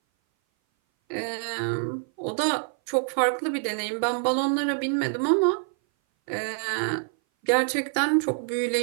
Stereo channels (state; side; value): silent; left; 58 dB below the other